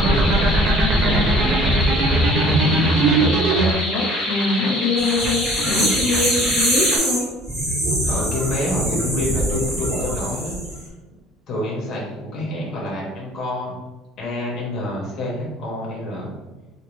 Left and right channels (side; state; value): both; normal; correlation 0.52